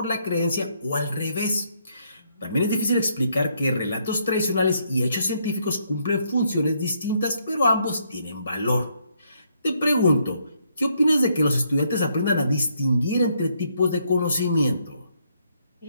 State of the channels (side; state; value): both; inverted; correlation -0.73